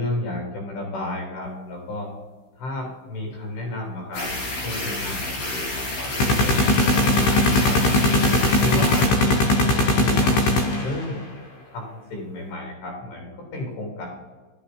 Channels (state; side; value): late; right; 16 ms